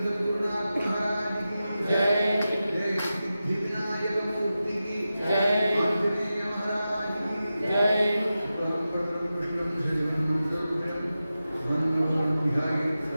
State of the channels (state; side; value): inverted; both; correlation -0.93